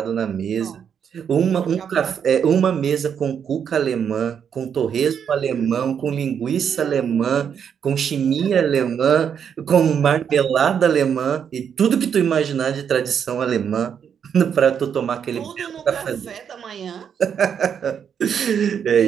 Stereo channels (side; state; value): left; quieter; 7.8 dB